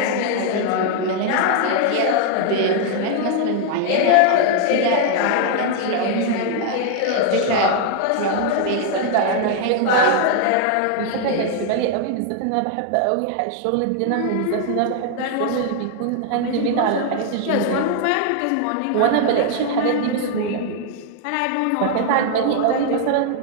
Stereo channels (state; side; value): different; both; correlation 0.00